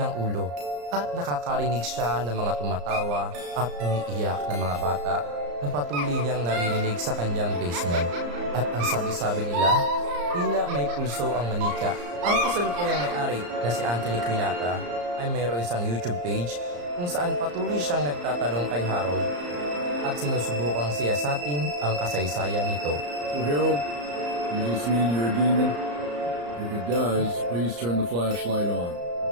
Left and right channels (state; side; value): late; left; 34 ms